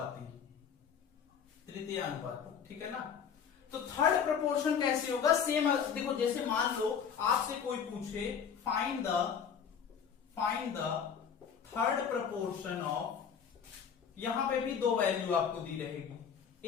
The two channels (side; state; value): right; quieter; 7.3 dB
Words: ठीक है ना। तो थर्ड प्रपोर्शन कैसे होगा, सेम देखो, जैसे मान लो आपसे कोई पूछे find the third proportion of, यहां पे भी दो वैल्यू आपको दी रहेगी,